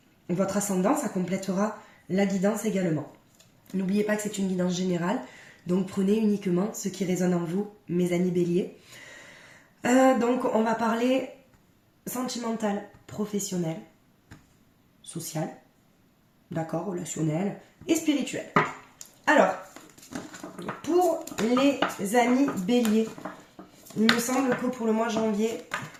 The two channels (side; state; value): both; identical; correlation 1.00